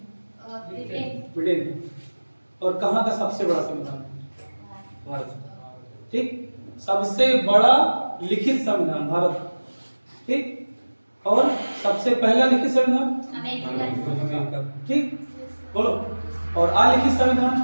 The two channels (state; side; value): inverted; both; correlation -1.00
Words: ब्रिटेन। और कहाँ का सबसे बड़ा संविधान? भारत। ठीक, सबसे बड़ा लिखित संविधान भारत, ठीक, और सबसे पहला लिखित संविधान अमेरिका, ठीक, बोलो। और अलिखित